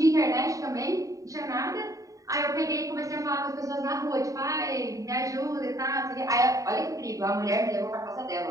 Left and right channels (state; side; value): late; left; 0.16 ms